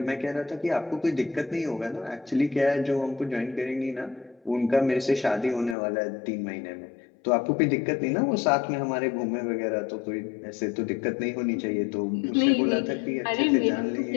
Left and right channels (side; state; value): right; drops out; at 5.8 s